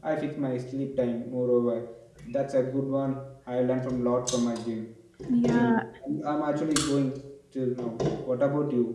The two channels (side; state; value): both; identical; correlation 1.00